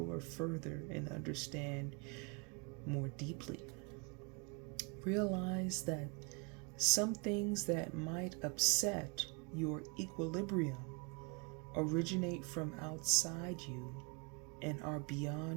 further and understand more deeply. Realize that some things that might upset your equilibrium originate from outside you and are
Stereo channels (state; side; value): quieter; left; 32.4 dB